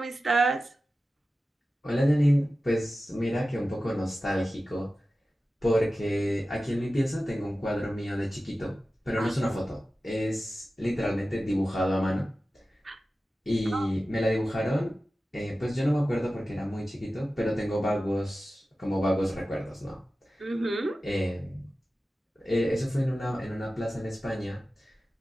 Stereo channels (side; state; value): both; normal; correlation 0.94